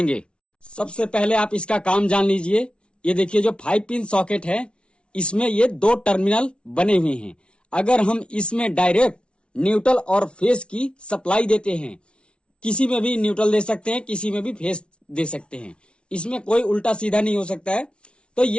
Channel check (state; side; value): late; right; 0.058 ms